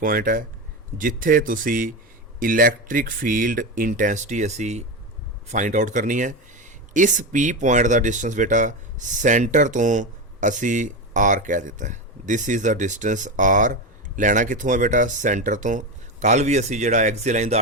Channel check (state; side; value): normal; both; correlation 0.17